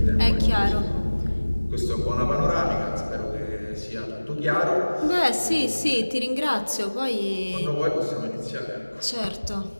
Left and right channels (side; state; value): both; inverted; correlation -1.00